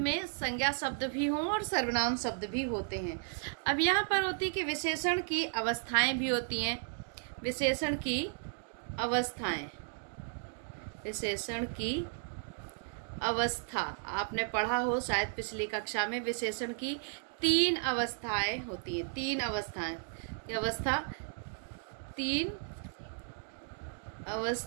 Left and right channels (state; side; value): silent; left; digital silence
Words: संज्ञा शब्द भी हों और सर्वनाम शब्द भी होते हैं। अब यहाँ पर होती है कि विशेषण की अवस्थाएं भी होती हैं। विशेषण की अवस्थाएं, विशेषण की अवस्था आपने पढ़ा हो शायद पिछली कक्षा में। विशेषण की 3 अवस्थाएं होती हैं, 3 अवस्थाएं। अवस्था 3